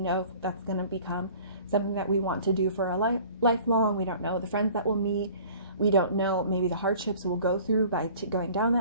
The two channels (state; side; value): inverted; both; correlation -0.48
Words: if that's going to become something that we want to do for a lifelong. We don't know the friends that we'll meet. We don't know maybe the hardships we'll go through by going down